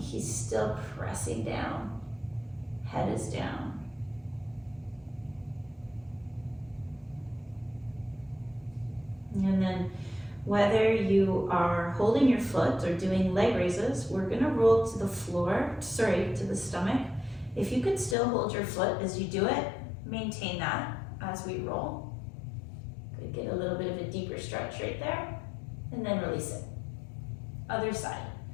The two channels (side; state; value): right; drops out; at 18.2 s